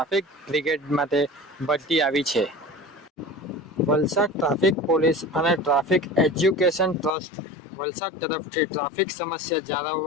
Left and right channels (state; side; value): drops out; right; at 7.1 s